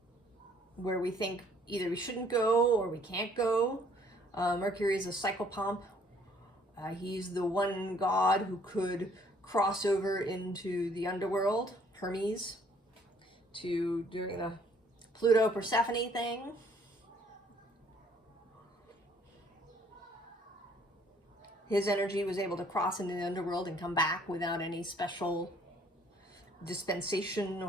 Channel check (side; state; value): both; normal; correlation 0.62